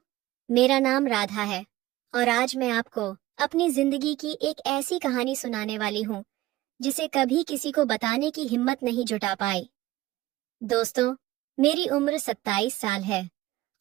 मेरा नाम राधा है और आज मैं आपको अपनी जिंदगी की एक ऐसी कहानी सुनाने वाली हूँ जिसे कभी किसी को बताने की हिम्मत नहीं जुटा पाई। दोस्तों, मेरी उम्र 27 साल है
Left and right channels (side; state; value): left; quieter; 17.1 dB